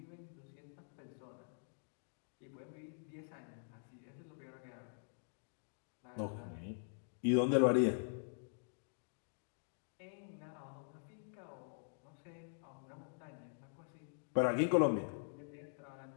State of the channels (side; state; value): right; silent; digital silence